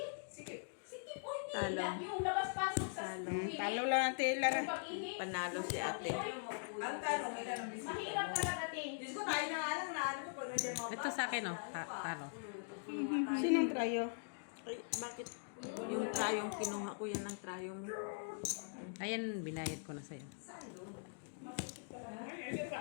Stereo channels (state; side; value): silent; right; digital silence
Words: Sige, oy, Talo. yung labas-pasok sa school. Talo lang natin, Lara. Pag-ihi. Panalo si ate. Ang tanong, ilan ang bisita? Mahirap talaga, ting. Diyos ko, tayo na nga lang na ano ko pag nandiyan mga Ito sa akin, oh. Talo. Sinong trayo? Ay, bakit? Yung trayong kinuha ko, yan ang trayo mo. Ayan, binayad ko na sa'yo.